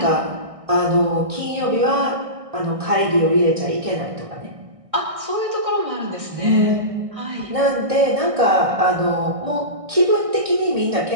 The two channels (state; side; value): late; left; 1.6 ms